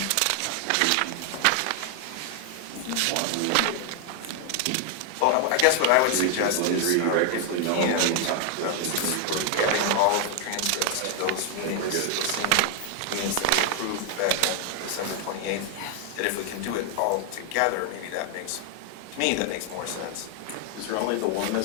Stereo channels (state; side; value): different; both; correlation 0.00